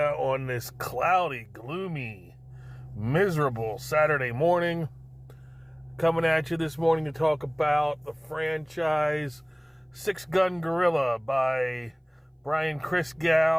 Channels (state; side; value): identical; both; correlation 1.00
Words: this cloudy, gloomy, miserable Saturday morning. Coming at you this morning to talk about the franchise Six Gun Gorilla by Brian